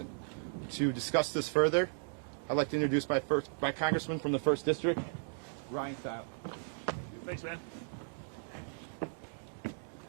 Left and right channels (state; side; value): silent; left; digital silence